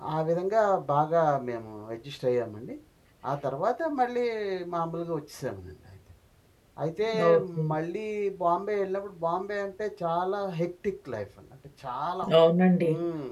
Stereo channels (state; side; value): identical; both; correlation 1.00